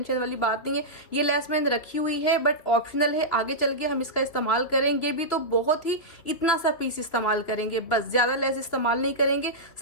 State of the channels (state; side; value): late; right; 3.4 ms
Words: वाली बात नहीं है। ये लेस मैंने रखी हुई है बट ऑप्शनल है, आगे चल के हम इसका इस्तेमाल करेंगे भी तो बहुत ही इतना सा पीस इस्तेमाल करेंगे, बस ज्यादा लेस इस्तेमाल नहीं करेंगे।